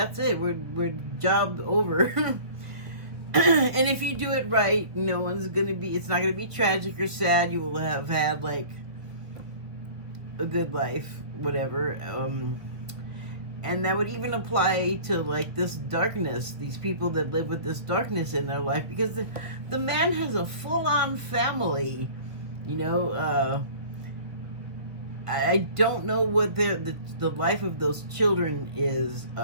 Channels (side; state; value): left; late; 1.4 ms